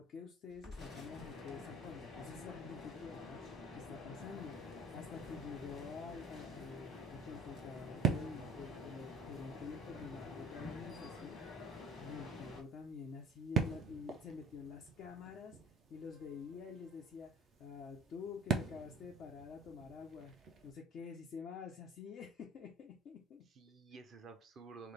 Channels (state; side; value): normal; both; correlation 0.48